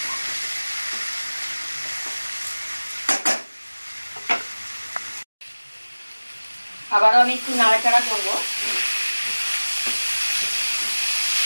আবারও আমি একটু নাড়াচাড়া করব।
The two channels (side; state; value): both; inverted; correlation -1.00